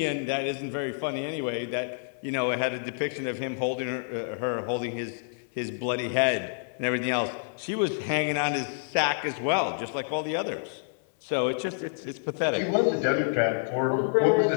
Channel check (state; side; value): silent; right; 55 dB below the other